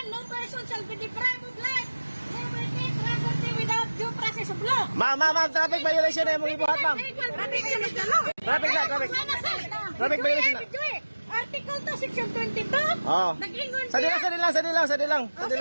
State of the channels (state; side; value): inverted; both; correlation -1.00